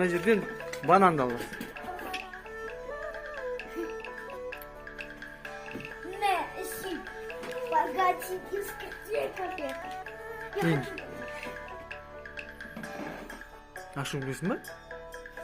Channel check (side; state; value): both; identical; correlation 1.00